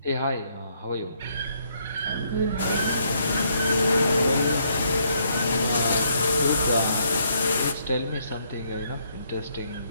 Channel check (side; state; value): both; inverted; correlation -0.72